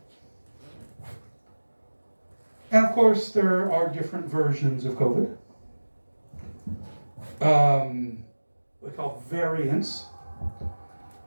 And of course, there are different versions of COVID. We call variants.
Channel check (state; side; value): inverted; both; correlation -1.00